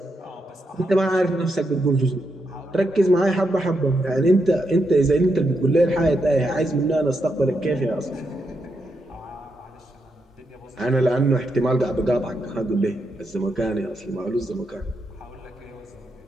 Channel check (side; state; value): both; normal; correlation 0.82